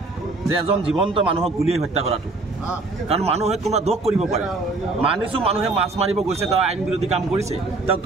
যে এজন জীৱন্ত মানুহক গুলিয়াই হত্যা কৰাটো? কাৰণ মানুহে কোনোবা দোষ কৰিব পাৰে। মানিছোঁ মানুহে মাছ মাৰিব গৈছে, তেওঁ আইন বিৰোধী কাম কৰিছে, তেওঁক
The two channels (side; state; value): left; quieter; 3.4 dB